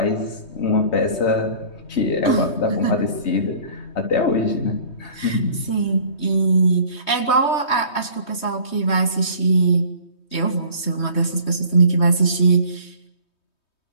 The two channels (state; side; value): late; right; 3.2 ms